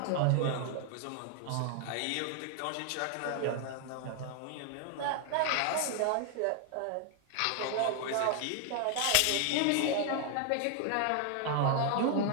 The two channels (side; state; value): both; different; correlation 0.00